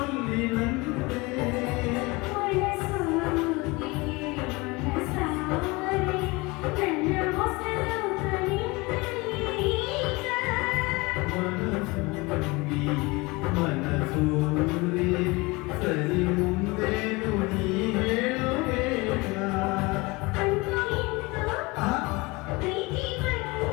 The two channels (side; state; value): right; quieter; 24.4 dB